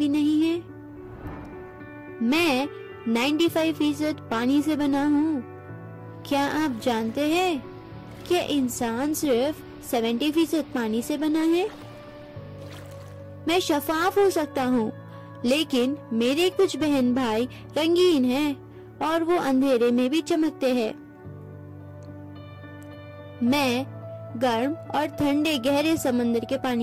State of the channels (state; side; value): identical; both; correlation 1.00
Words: नहीं है? मैं 95% पानी से बना हूँ। क्या आप जानते हैं कि इंसान सिर्फ 70% पानी से बना है? मैं शफाफ हो सकता हूँ, लेकिन मेरे कुछ बहन भाई रंगीन हैं और वो अंधेरे में भी चमकते हैं। मैं गर्म और ठंडे गहरे समंदर के